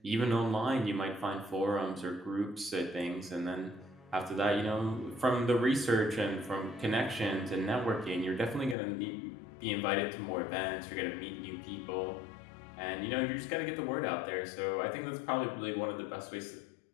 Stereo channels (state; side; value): drops out; right; at 8.8 s